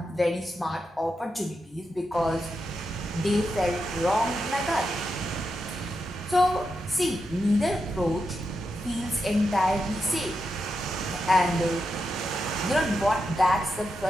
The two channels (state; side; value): normal; both; correlation 0.86